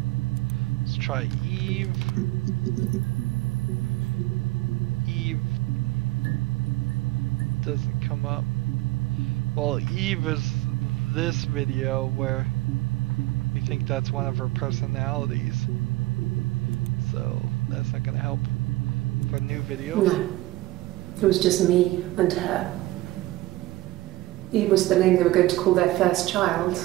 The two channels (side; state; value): left; quieter; 18.0 dB